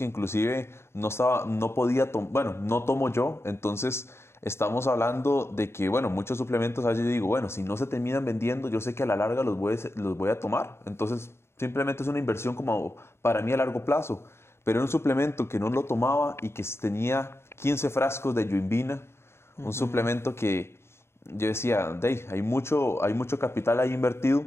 inclusive no podía tomar, bueno, no tomo yo, entonces estamos hablando de que, bueno, muchos suplementos, a veces yo digo, bueno, si no se terminan vendiendo, yo sé que a la larga los voy a tomar, entonces simplemente es una inversión como para mí a largo plazo, pero era un suplemento que no lo tomaba y que tenía 15 frascos de yoimbina, un suplemento que yo decía, hay mucho capital ahí invertido.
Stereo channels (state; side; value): late; right; 0.12 ms